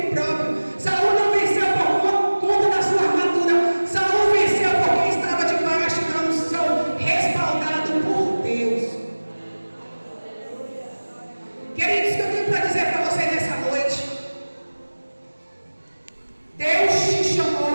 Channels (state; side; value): inverted; both; correlation -1.00